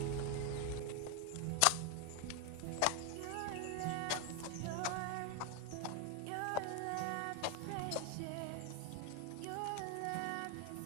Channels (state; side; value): different; both; correlation 0.01